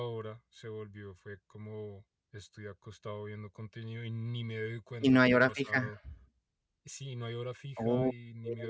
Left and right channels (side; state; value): both; identical; correlation 1.00